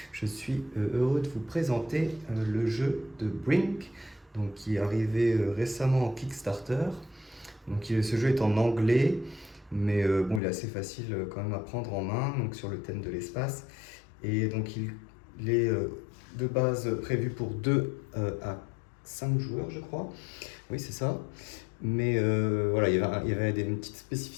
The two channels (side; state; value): right; drops out; at 10.4 s